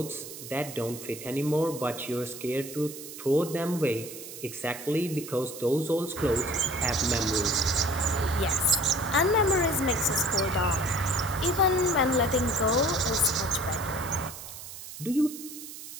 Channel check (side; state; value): right; noise; hiss, 12 dB below the sound